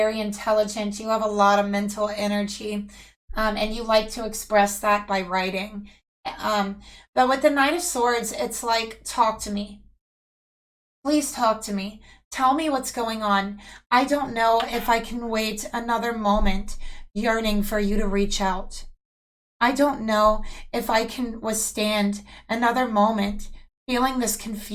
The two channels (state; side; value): identical; both; correlation 1.00